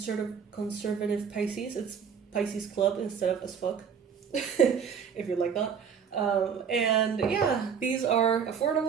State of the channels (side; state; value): left; quieter; 7.0 dB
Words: Pisces. It's Pisces Club instead of as fuck, if you like that. And yeah, these are